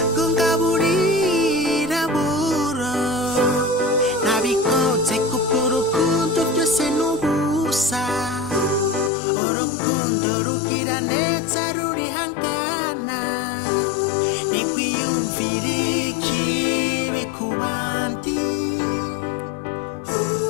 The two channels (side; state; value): right; drops out; at 9.1 s